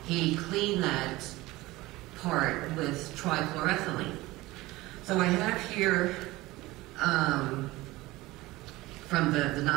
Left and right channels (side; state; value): left; quieter; 19.4 dB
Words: he cleaned that part with trichloroethylene. So I have here from the